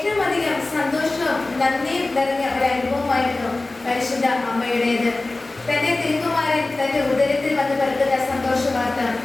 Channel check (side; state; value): right; quieter; 3.1 dB